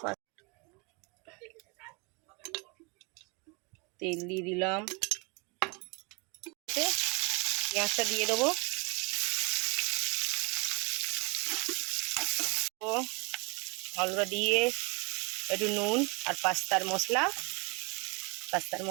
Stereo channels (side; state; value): left; quieter; 30.3 dB